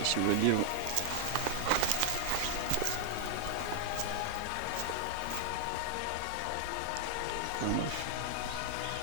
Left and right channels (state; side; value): different; both; correlation 0.00